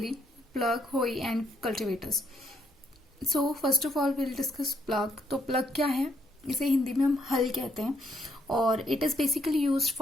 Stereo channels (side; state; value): both; normal; correlation 0.72